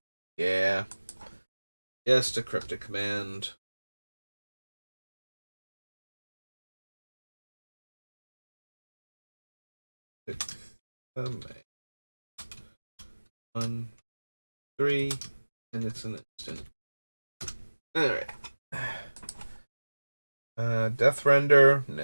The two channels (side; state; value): both; inverted; correlation -1.00